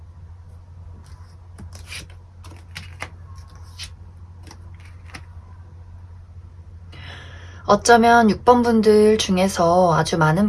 어쩌면 6번 분들 중에서 아주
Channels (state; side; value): identical; both; correlation 1.00